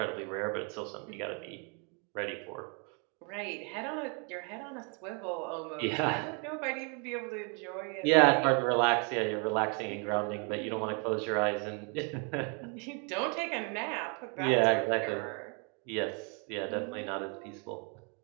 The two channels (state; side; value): quieter; left; 36.2 dB